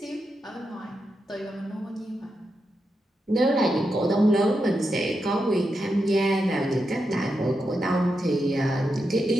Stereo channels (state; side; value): normal; both; correlation 0.86